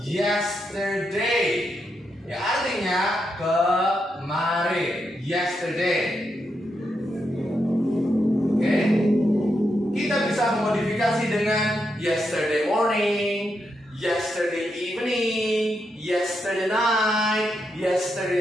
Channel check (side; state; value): both; normal; correlation 0.83